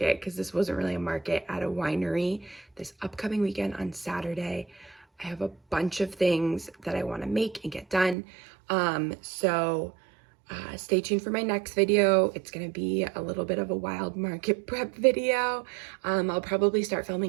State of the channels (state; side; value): drops out; left; at 8.2 s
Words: because this wasn't really a market, at a winery this upcoming weekend on Saturday. I have a bunch of things that I want to make and get done. Stay tuned for my next video. It's going to be a little bit of a wild market prep video. I'll probably start